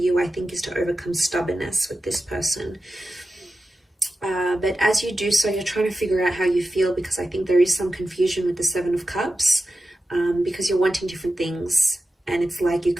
I think, is to overcome stubbornness with this person. But as you do so, you're trying to figure out how you feel, because I think there is some confusion with the Seven of Cups, because you're wanting different things, and it's like you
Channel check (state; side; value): normal; both; correlation 0.92